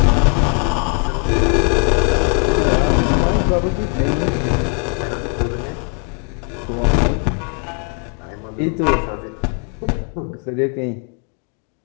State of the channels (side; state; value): right; quieter; 38.8 dB